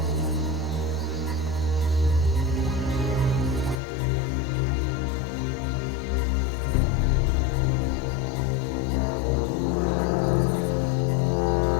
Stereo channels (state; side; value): drops out; right; at 3.8 s